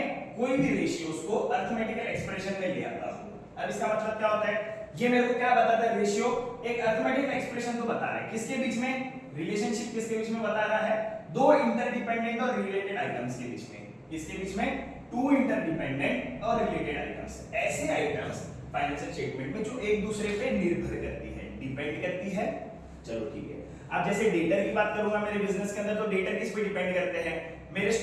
कोई भी रेशियोज को अरिथमेटिकल एक्सप्रेशन में ले आता हूं। अब इसका मतलब क्या होता है, ये मेरे को क्या बताता है, रेशियो एक अरिथमेटिकल एक्सप्रेशन तो बता रहा है, किसके बीच में, रिलेशनशिप किसके बीच में बता रहा है, दो इंटरडिपेंडेंट और रिलेटेड आइटम्स के बीच में, किसके बीच में, टू इंटरडिपेंडेंट और रिलेटेड आइटम्स, ऐसे आइटम्स फाइनेंशियल स्टेटमेंट में जो एक दूसरे पे निर्भर करती है, डिपेंड करती है। चलो ठीक है, अब जैसे डेटर की बात करूंगा मेरे बिजनेस के अंदर, तो डेटर किस पे डिपेंड करते हैं, मेरे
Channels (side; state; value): both; identical; correlation 1.00